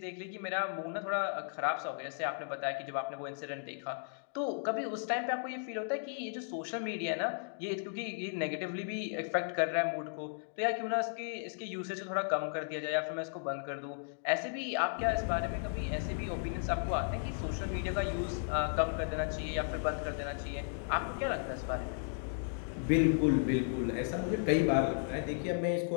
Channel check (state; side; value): silent; right; digital silence